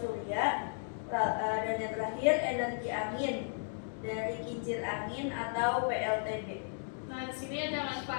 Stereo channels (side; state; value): right; silent; digital silence